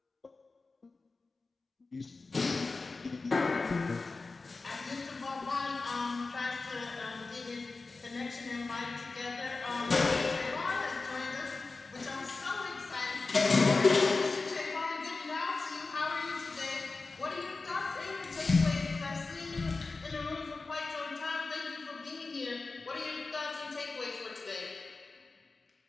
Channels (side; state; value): right; quieter; 3.8 dB